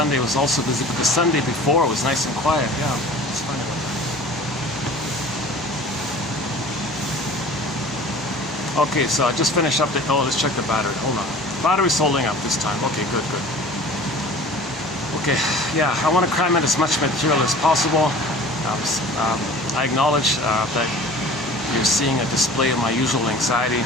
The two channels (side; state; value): both; normal; correlation 0.43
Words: was also busy, but the Sunday before was nice and quiet. Yeah, it's funny about that. Okay, so I just finished up the, oh, let's check the battery. Hold on. Battery's holding up this time. Okay, good. Okay, yeah, I want to cram in as much material as possible. I acknowledge that you're seeing a display of my usual anxiety.